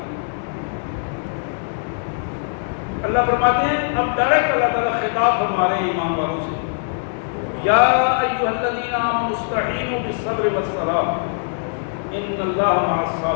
اللہ فرماتے ہیں، اب ڈائریکٹ اللہ تعالیٰ خطاب فرما رہے ہیں ایمان والوں سے، یا ایھا الذین آمنوا استعینوا بالصبر والصلاۃ ان اللہ مع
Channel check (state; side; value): silent; right; digital silence